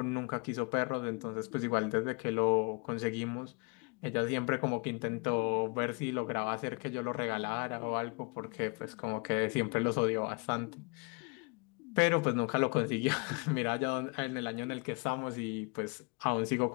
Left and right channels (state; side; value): quieter; right; 31.8 dB